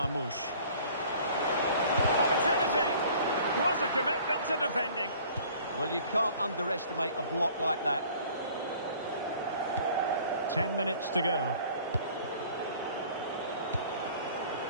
Opportunity. Was a commitment to defending. Well, you can't underestimate a block like that. 10 minutes to go.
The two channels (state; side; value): inverted; both; correlation -0.51